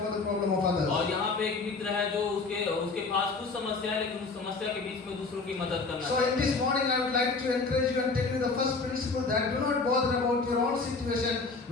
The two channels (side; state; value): right; quieter; 4.1 dB